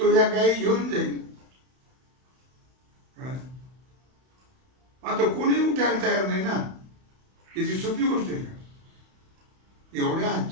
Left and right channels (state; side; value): late; left; 31 ms